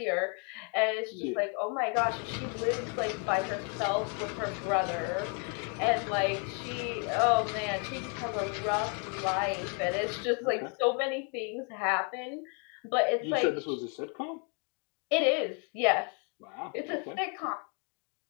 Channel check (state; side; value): quieter; right; 37.9 dB